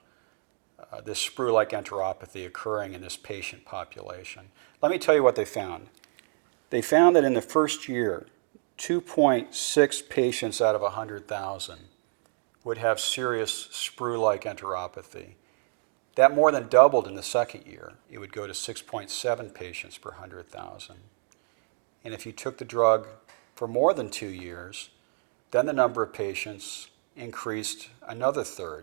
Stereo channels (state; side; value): silent; left; 59 dB below the other